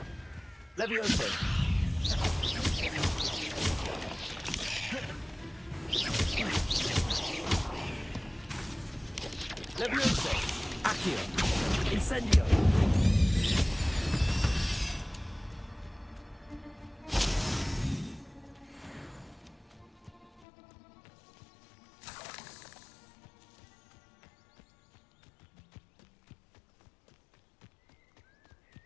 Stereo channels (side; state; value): right; drops out; at 20.5 s